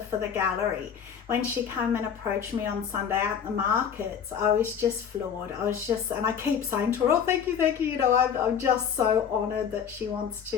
for the gallery. When she came and approached me on Sunday at the markets, I was just floored. And I keep saying to her, oh, thank you. You know, I'm just so honoured that she wants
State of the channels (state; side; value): quieter; right; 7.8 dB